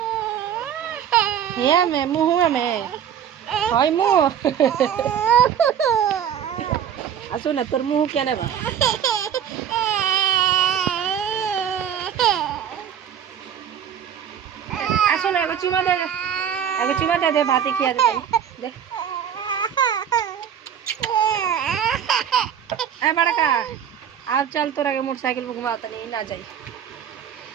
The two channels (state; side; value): quieter; left; 9.0 dB